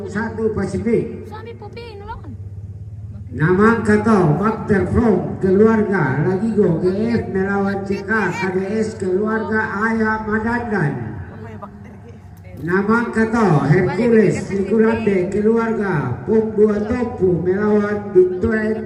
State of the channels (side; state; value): both; identical; correlation 1.00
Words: Pasifik. Suami Popi nolongan. Namang Kato, Bakter From, keluarga Lagigo GF melawan CK KDS, keluarga Ayah Madandan. Namang Kato, Hercules, Nikulande, keluarga Pum 2 Topu melawan